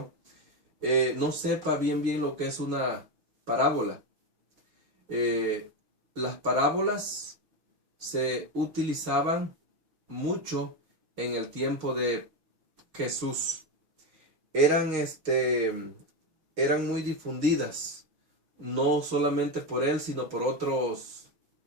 no sepa bien lo que es una parábola. Las parábolas se utilizaban mucho en el tiempo de Jesús. Eran muy difundidas, no solamente por él, sino por otros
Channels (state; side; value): late; left; 6.4 ms